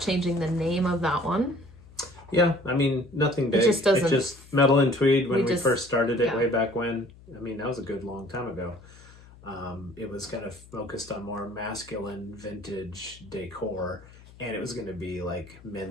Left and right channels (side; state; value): left; noise; hum, 22 dB below the sound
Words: changing the name of that one. Yeah. I mean, nothing big. It just doesn't. It's just Metal and Tweed when we first started it way back when. I mean, that was a good long time ago. It was kind of focused on more masculine vintage decor, and it was going to be like